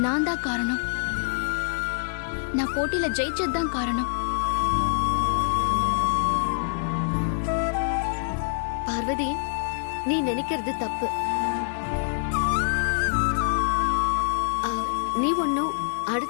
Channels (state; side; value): silent; right; digital silence